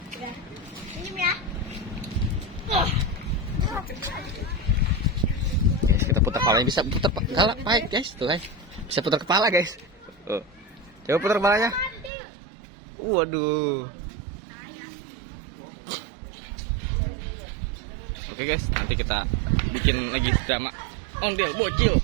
Guys, kita putar kepalanya, bisa putar kepala, baik guys, tuh guys. Bisa putar kepala, guys. Coba putar kepalanya. Waduh. Oke guys, nanti kita bikin lagi drama ondel bocil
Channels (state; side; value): drops out; left; at 12.1 s